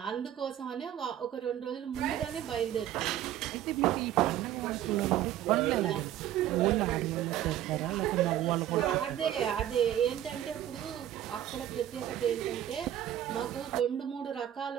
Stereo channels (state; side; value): quieter; left; 11.8 dB